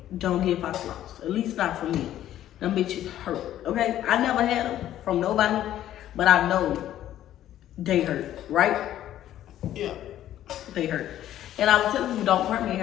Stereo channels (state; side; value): quieter; right; 12.3 dB